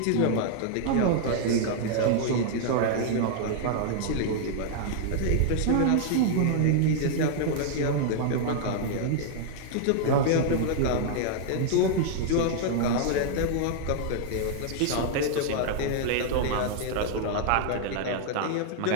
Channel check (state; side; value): different; both; correlation -0.01